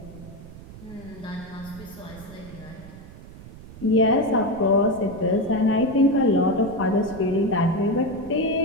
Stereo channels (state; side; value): noise; right; rumble, 17 dB below the sound